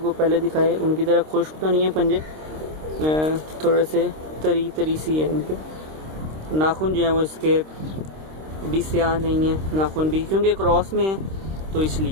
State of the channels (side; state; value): left; late; 26 ms